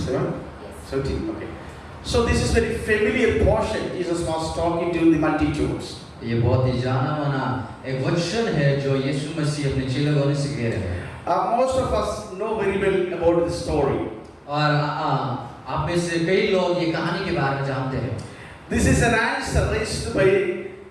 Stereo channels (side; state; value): both; identical; correlation 1.00